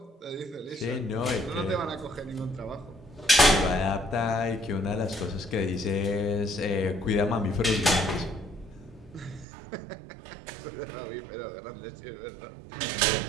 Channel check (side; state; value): left; drops out; at 9.5 s